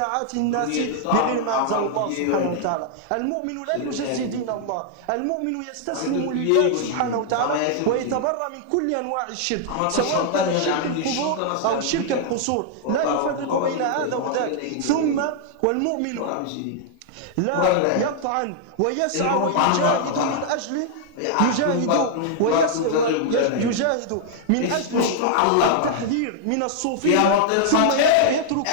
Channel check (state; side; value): different; both; correlation -0.01